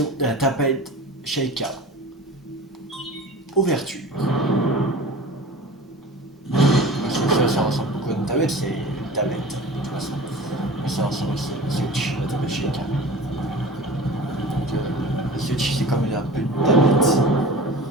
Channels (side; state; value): both; normal; correlation 0.38